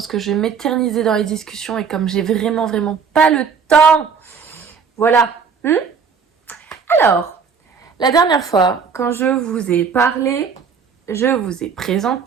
que je vais m'éterniser dans les discussions et comme j'ai vraiment pas le temps. Voilà. Alors, la dernière fois, quand je vous ai parlé, je vous ai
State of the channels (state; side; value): quieter; left; 6.1 dB